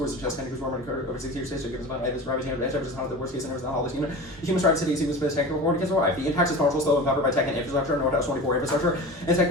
suggest 10 degrees warmer over 6 years to give us about this rapid temperature is not the worst case scenario in all this unit. Human rights cities use space technical warning against life. The impact is powerful, slow, and covered by tech and infrastructure, North 24 infrastructure, and tech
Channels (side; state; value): right; noise; hum, 23 dB below the sound